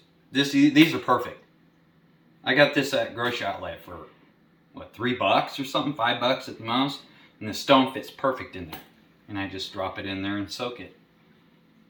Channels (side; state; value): both; identical; correlation 1.00